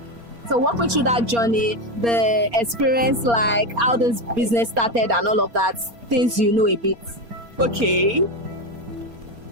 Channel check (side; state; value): left; late; 4.3 ms